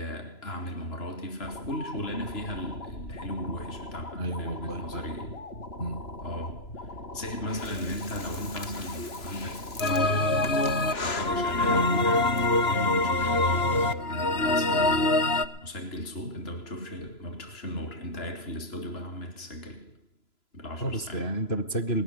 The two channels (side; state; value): right; late; 3.0 ms